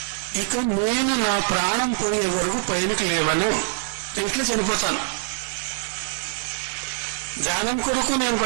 ఇక నేను నా ప్రాణం పోయే వరకు పైనకి లేవను, ఇంట్లో చనిపోతాను. ధ్యానం కొరకు నేను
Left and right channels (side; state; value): left; silent; digital silence